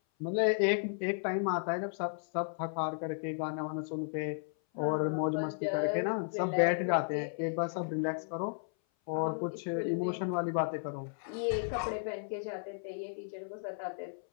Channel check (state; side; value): silent; right; 55 dB below the other